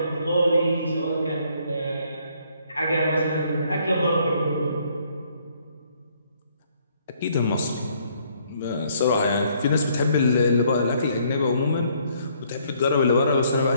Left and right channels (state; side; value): inverted; both; correlation -0.66